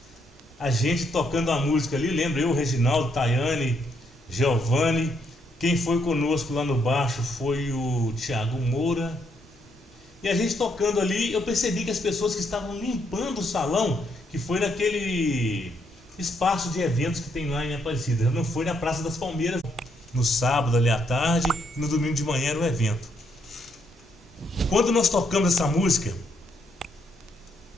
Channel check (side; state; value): both; normal; correlation 0.74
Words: a gente tocando a música ali, lembra eu, Reginaldo, Tayane, Giovanni. Quem foi conosco lá no baixo foi o Thiago Moura. E a gente tocando ali, eu percebi que as pessoas que estavam limpando o salão, que foi naquele espaço de eventos que tem lá em Aparecida, não foi na Praça das Palmeiras, no sábado ali à tarde, e no domingo de manhã era o evento. Quando nós tocamos essa música,